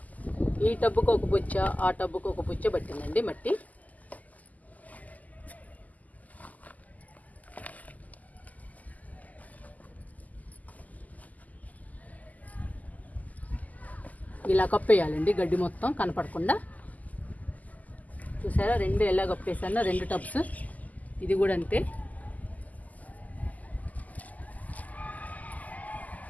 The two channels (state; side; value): late; right; 0.078 ms